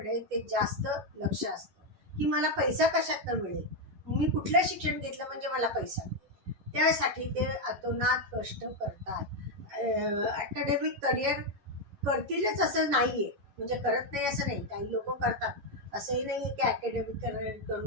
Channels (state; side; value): late; left; 11 ms